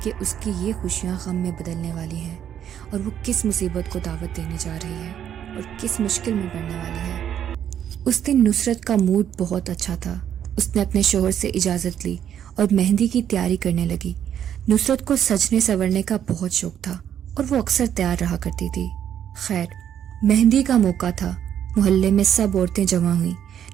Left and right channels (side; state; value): left; quieter; 9.6 dB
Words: کہ اس کی یہ خوشیاں غم میں بدلنے والی ہیں اور وہ کس مصیبت کو دعوت دینے جا رہی ہے اور کس مشکل میں پڑنے والی ہے. اس دن نصرت کا موڈ بہت اچھا تھا. اس نے اپنے شوہر سے اجازت لی اور مہندی کی تیاری کرنے لگی. نصرت کو سجنے سنورنے کا بہت شوق تھا اور وہ اکثر تیار رہا کرتی تھی. خیر، مہندی کا موقع تھا. محلے میں سب عورتیں جمع ہوئیں.